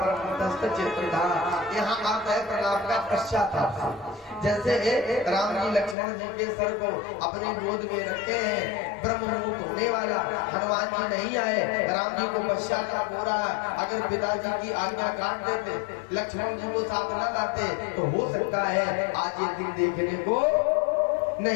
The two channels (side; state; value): right; drops out; at 6.0 s